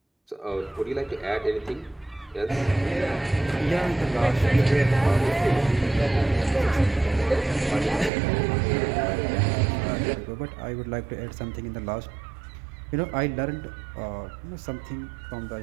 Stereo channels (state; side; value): drops out; left; at 8.1 s